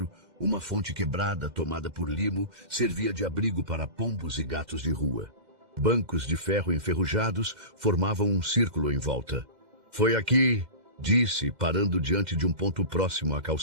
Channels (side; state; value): left; late; 2.1 ms